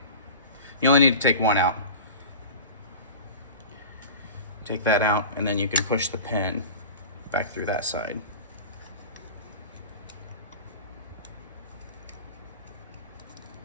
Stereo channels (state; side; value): inverted; both; correlation -0.34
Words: You only need to take one out. Take that out, and then you can push the pin back through that side.